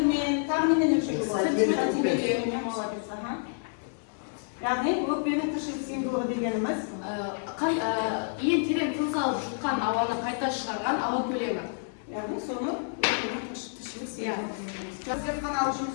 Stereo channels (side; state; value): right; silent; 59 dB below the other